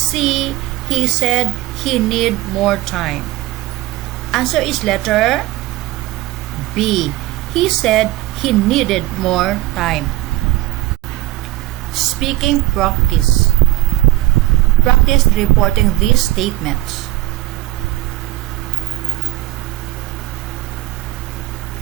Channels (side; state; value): left; quieter; 16.7 dB